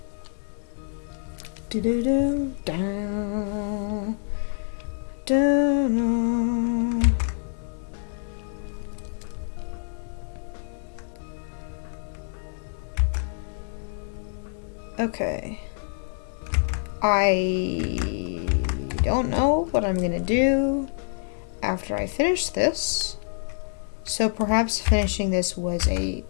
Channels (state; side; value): silent; right; digital silence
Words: Do-do-do, down, down. Okay. I don't know what I'm gonna do after I finish this. So perhaps finishing this was